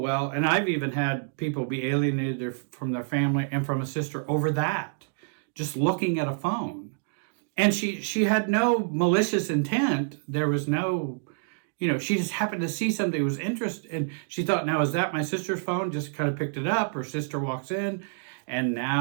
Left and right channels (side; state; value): left; silent; digital silence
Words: and I've even had people be alienated from their family and from a sister over that, just looking at a phone. And she had no malicious intent. There was no, she just happened to see something that was interesting. And she thought, now, is that my sister's phone? Just kind of picked it up. Her sister walks in, and